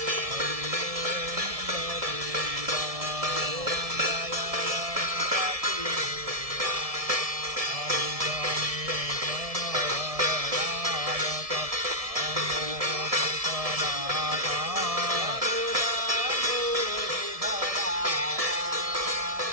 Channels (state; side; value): late; left; 1.7 ms